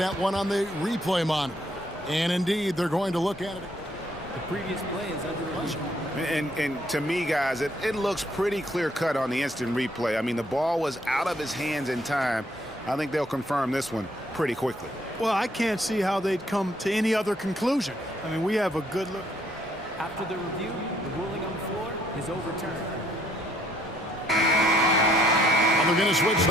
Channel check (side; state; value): both; normal; correlation 0.67